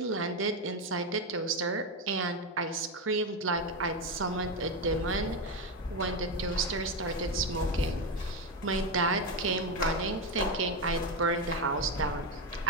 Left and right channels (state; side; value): normal; both; correlation 0.11